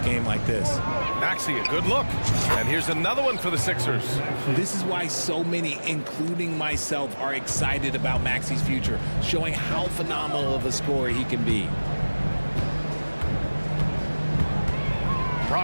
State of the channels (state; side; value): inverted; both; correlation -1.00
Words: like this. Maxey, a good look. And here's another one for the Sixers. This is why so many, including myself, are excited about Maxey's future, showing how phenomenal of a scorer he can be.